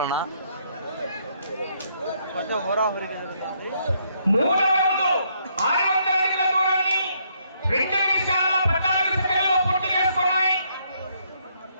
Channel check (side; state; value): both; inverted; correlation -0.72